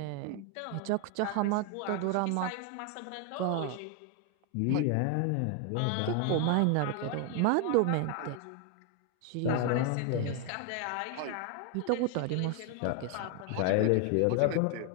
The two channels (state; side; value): different; both; correlation 0.01